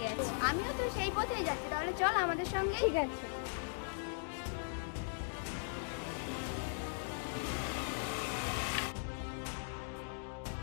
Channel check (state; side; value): silent; right; digital silence